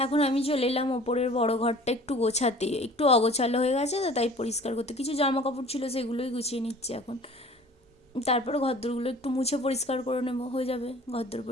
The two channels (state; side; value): normal; both; correlation 0.47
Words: এখন আমি চলে এলাম ওপরের বড় ঘরটা একটু গোছাতে, একটু অগোছালো হয়ে গেছে তো, তাই পরিষ্কার করতে। কিছু জামা কাপড় ছিল, সেগুলোই গুছিয়ে নিচ্ছি এখন। তারপরে ঘরদোরগুলো একটু মুছে পরিষ্কার করে নেবো, হয়ে যাবে ঘরদোর